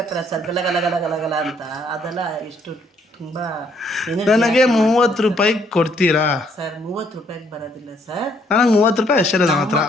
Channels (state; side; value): normal; both; correlation 0.68